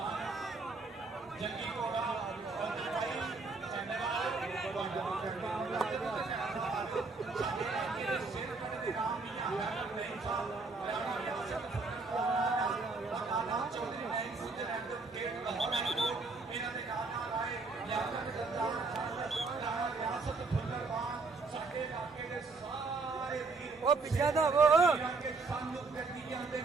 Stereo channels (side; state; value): left; quieter; 3.9 dB